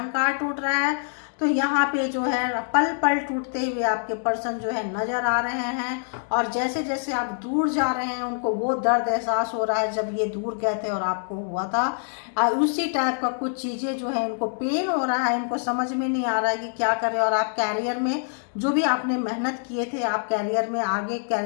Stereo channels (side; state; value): right; silent; digital silence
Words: टूट रहा है। तो यहाँ पे जो है पल पल टूटते हुए आपके पर्सन जो है नजर आ रहे हैं, और जैसे जैसे आप दूर जा रहे हैं उनको वो दर्द एहसास हो रहा है जब ये दूर गए थे और आपको हुआ था। उसी टाइप का कुछ चीजें जो है इनको पेन हो रहा है, इनको समझ में नहीं आ रहा है कि क्या करें। और आप कैरियर में जो भी आपने मेहनत किए थे, आप कैरियर में आगे